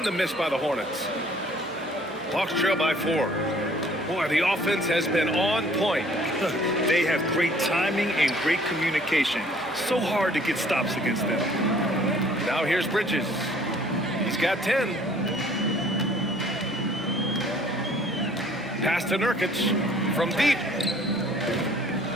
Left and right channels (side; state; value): both; normal; correlation 0.56